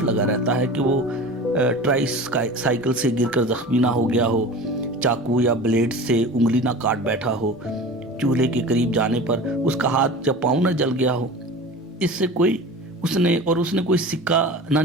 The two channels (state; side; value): normal; both; correlation 0.35